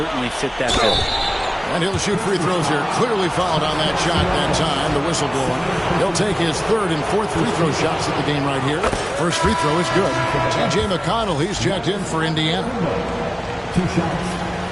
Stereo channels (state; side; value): identical; both; correlation 1.00